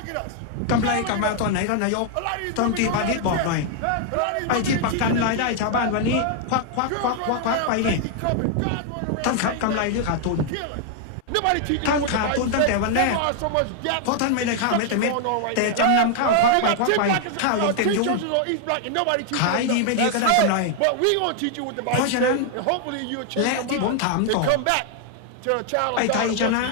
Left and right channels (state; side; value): different; both; correlation 0.00